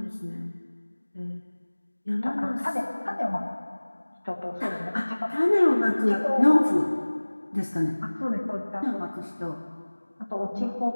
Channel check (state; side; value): inverted; both; correlation -1.00